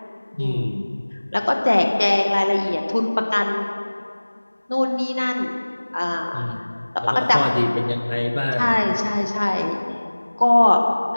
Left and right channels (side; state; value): both; inverted; correlation -1.00